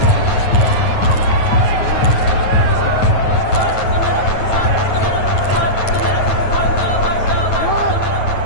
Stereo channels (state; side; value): late; right; 9.4 ms